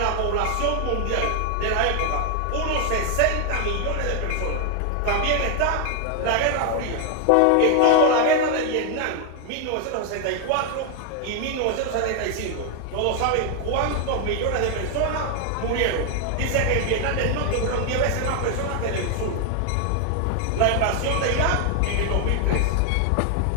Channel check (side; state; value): both; different; correlation 0.00